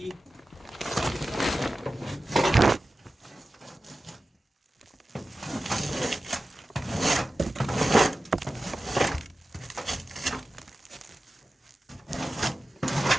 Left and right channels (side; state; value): both; normal; correlation 0.94